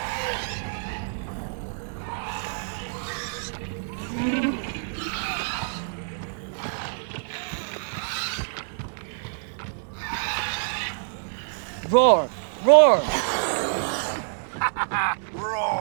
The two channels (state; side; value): silent; left; 59 dB below the other